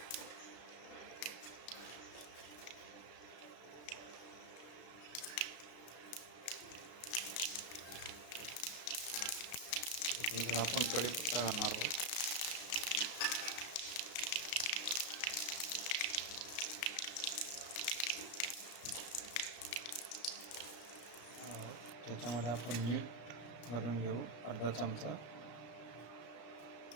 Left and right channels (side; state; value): right; late; 34 ms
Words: त्याच्यानंतर आपण कढीपत्ता घालणार आहोत. त्याच्यामध्ये आपण मीठ घालून घेऊ अर्धा चमचा.